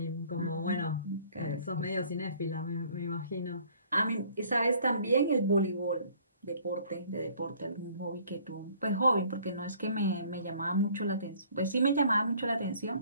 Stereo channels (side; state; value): both; inverted; correlation -0.56